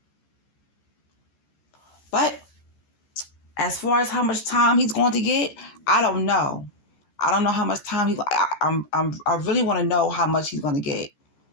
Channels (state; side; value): late; right; 14 ms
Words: But as far as how much time he's going to get, I don't know. I don't know how much time I really want to know how much he's going to get.